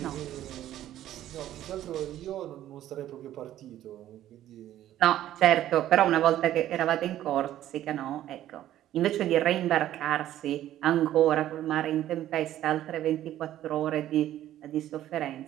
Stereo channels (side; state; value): left; quieter; 12.7 dB